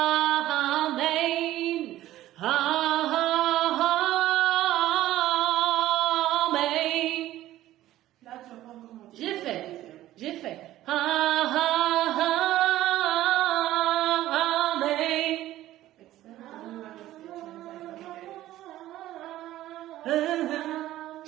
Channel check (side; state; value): left; quieter; 14.5 dB